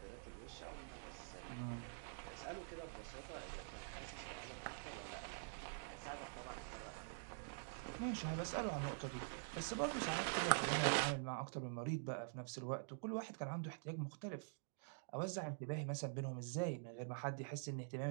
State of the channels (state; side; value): silent; left; digital silence